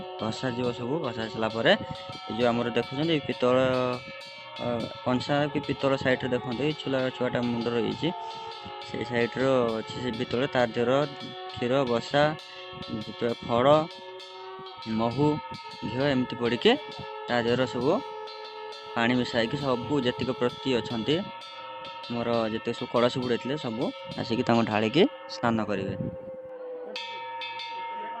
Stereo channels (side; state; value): both; identical; correlation 1.00